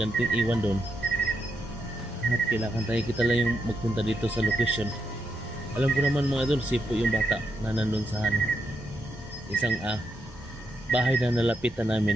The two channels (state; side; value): normal; both; correlation 0.82